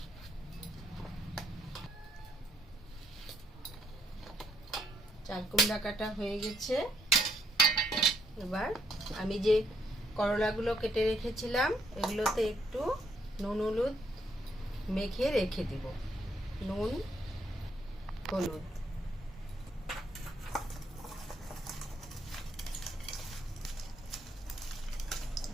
চাল কুমড়া কাটা হয়ে গেছে। এবার আমি যে করলাগুলো কেটে রেখেছিলাম এগুলোতে একটু নুন হলুদ মেখে রেখে দিব। নুন হলুদ,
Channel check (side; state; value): both; normal; correlation 0.72